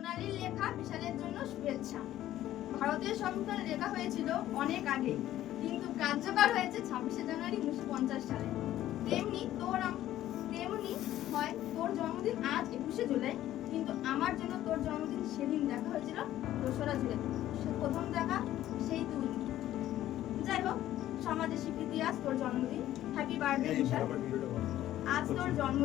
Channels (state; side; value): quieter; right; 13.3 dB